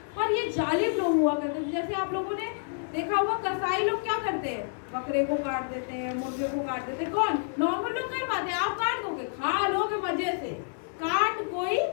पर ये जालिम लोग हुआ करते थे। जैसे आप लोगों ने देखा होगा कसाई लोग क्या करते हैं, बकरे को काट देते हैं, मुर्गे को काट देते हैं। कौन? नॉर्मल लोग कर पाते हैं। आप काट दोगे, खा लोगे मजे से, काट कोई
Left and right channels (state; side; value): silent; right; 59 dB below the other